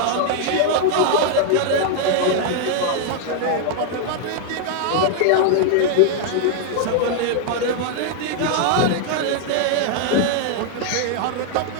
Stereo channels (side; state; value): both; different; correlation 0.00